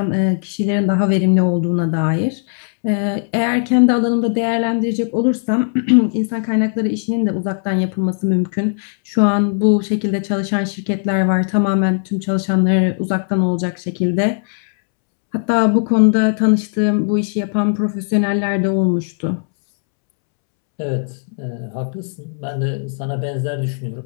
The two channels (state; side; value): silent; right; 67 dB below the other